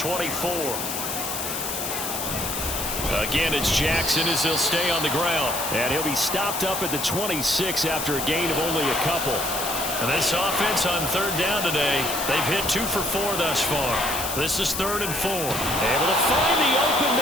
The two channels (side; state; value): left; noise; hiss, 4 dB below the sound